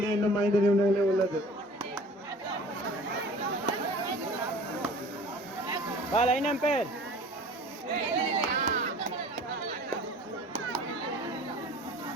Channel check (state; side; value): normal; both; correlation 0.46